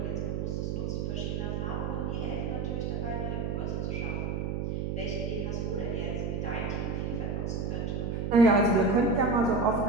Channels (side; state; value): right; noise; hum, 1 dB below the sound